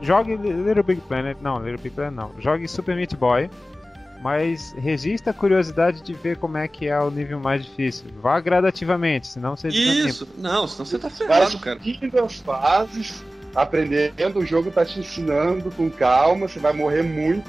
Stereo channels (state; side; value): normal; both; correlation 0.95